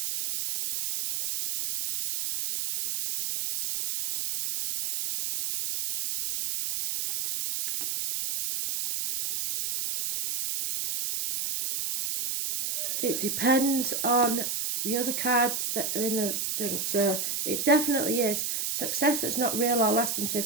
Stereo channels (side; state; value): right; noise; hiss, 2 dB below the sound